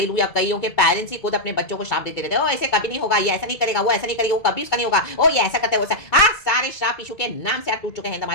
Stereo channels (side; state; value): right; late; 2.2 ms